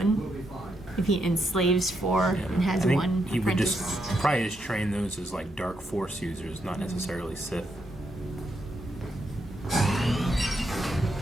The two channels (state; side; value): normal; both; correlation 0.80